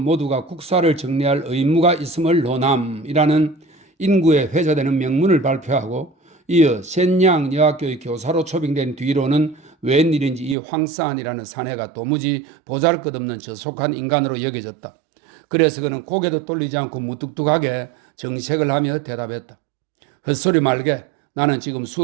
국사를 정리할 의무가 있음을 논함이라는 인구에 회자되는 명문을 발표하고 이어 센양 여학교의 교사로 초빙된 뒤로는 웬일인지 이 황사안이라는 사내가 도무지 보잘것없는 저속한 인간으로 여겨졌다. 그래서 그는 고개도 돌리지 않고 무뚝뚝하게 정색을 하며 대답했다. 헛소리 말게. 나는 지금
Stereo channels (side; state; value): left; drops out; at 10.6 s